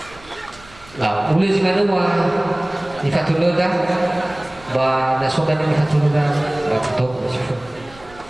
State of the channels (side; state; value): right; noise; rumble, 23 dB below the sound